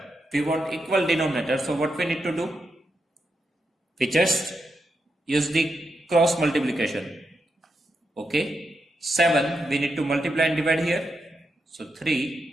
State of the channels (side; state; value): both; normal; correlation 0.85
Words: we want equal denominator. So what we need to do? We just use the cross multiplication. Okay. 7 we need to multiply and divide here. So 3